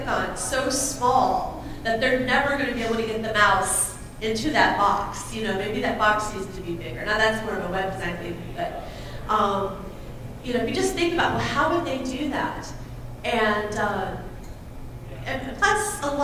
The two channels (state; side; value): identical; both; correlation 1.00